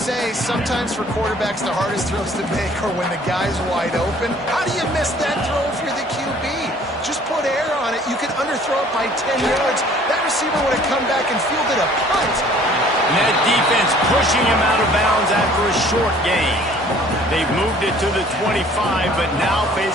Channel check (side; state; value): both; normal; correlation 0.54